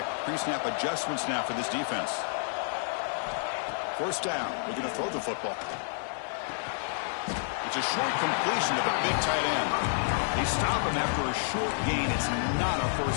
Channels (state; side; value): silent; right; 58 dB below the other